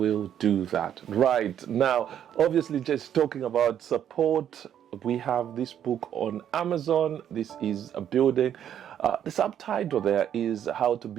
do that. Right now, obviously, just talking about support, we have this book on Amazon. This is a building. The subtitle there is How to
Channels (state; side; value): quieter; left; 9.8 dB